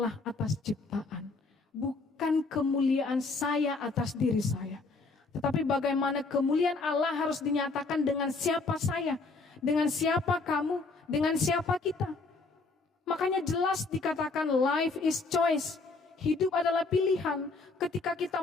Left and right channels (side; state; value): right; quieter; 3.8 dB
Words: atas ciptaan, bukan kemuliaan saya atas diri saya. Tetapi bagaimana kemuliaan Allah harus dinyatakan dengan siapa saya, dengan siapa kamu, dengan siapa kita. Makanya jelas dikatakan life is choice. Hidup adalah pilihan. Ketika kita